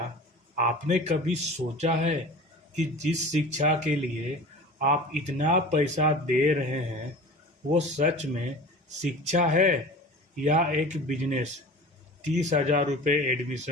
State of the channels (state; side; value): normal; both; correlation 0.37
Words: आपने कभी सोचा है कि जिस शिक्षा के लिए आप इतना पैसा दे रहे हैं वो सच में शिक्षा है या एक बिजनेस? 30,000 रुपये